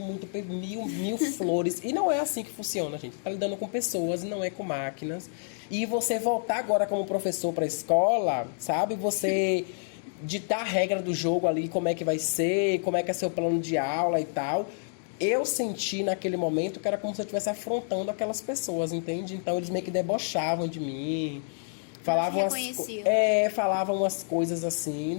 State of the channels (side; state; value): right; silent; digital silence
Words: muito mil flores. E não é assim que funciona, gente. Tá lidando com pessoas e não é com máquinas. E você voltar agora como professor para a escola, sabe? Você ditar a regra do jogo ali, como é que vai ser, como é que é seu plano de aula e tal. Eu senti naquele momento que era como se eu estivesse afrontando aquelas pessoas, entende? Então eles meio que debochavam de mim. Falavam umas coisas assim,